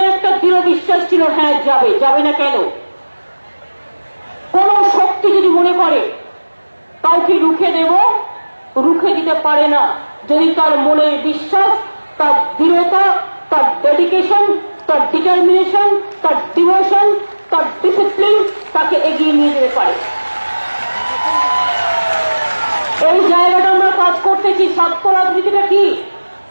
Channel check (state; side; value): inverted; both; correlation -1.00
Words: একটা দৃঢ় বিশ্বাস ছিল, হ্যাঁ যাবে। যাবে না কেন? কোন শক্তি যদি মনে করে কাউকে রুখে দেব, রুখে দিতে পারে না যদি তার মনের বিশ্বাস, তার দৃঢ়তা, তার ডেডিকেশন, তার ডিটারমিনেশন, তার ডিভোশন, তার ডিসিপ্লিন তাকে এগিয়ে নিয়ে যেতে পারে। এই জায়গাটা আমরা কাজ করতেছি। ছাত্র রাজনীতিটা কি?